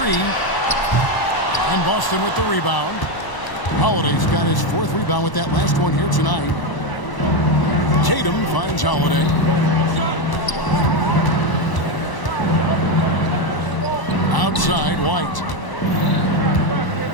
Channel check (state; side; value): late; right; 1.0 ms